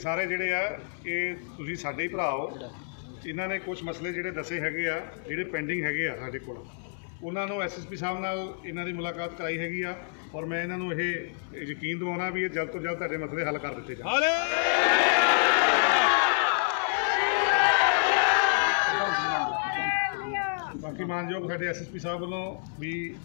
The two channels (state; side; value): silent; right; digital silence